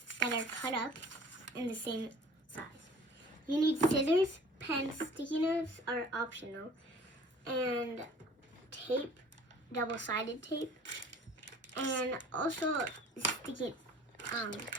that are cut up in the same size. You need scissors, pens, sticky notes are optional, and tape, double-sided tape, and also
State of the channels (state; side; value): normal; both; correlation 0.49